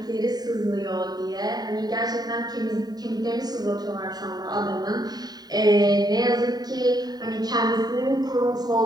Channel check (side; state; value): left; late; 0.19 ms